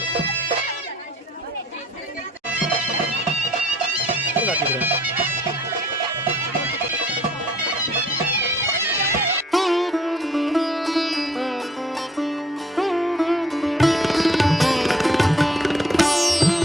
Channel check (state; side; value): normal; both; correlation 0.59